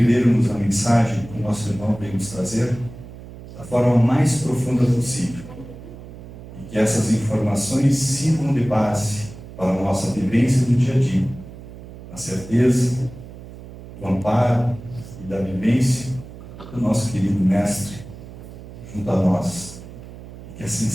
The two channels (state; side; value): noise; right; hum, 15 dB below the sound